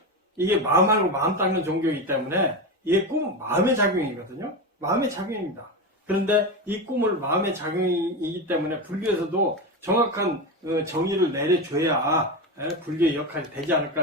이게 마음하고 마음 닦는 종교이기 때문에 이게 꿈은 마음의 작용이거든요. 마음의 작용입니다. 그런데 이 꿈을 마음의 작용이기 때문에 불교에서도 정확한 정의를 내려줘야 불교의 역할이 되지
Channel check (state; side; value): normal; both; correlation 0.18